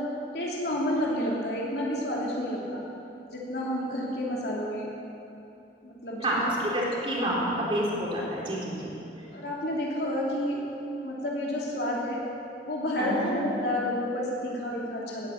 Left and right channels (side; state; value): both; normal; correlation 0.36